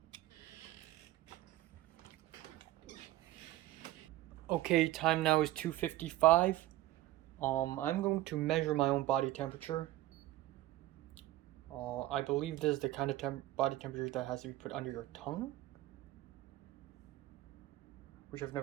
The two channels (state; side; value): quieter; left; 15.9 dB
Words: Okay, time now is 2:55. I'm going to measure my own body temperature. I believe this is the kind of body temperature that has to be put under your tongue, which I've